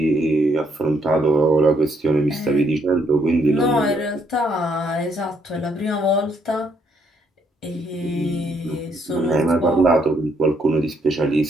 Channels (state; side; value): normal; both; correlation 0.71